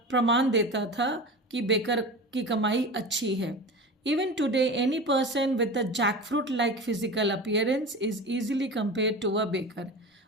देता था कि बेकर की कमाई अच्छी है। Even today, any person with a jackfruit-like physical appearance is easily compared to a baker।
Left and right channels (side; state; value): both; normal; correlation 0.30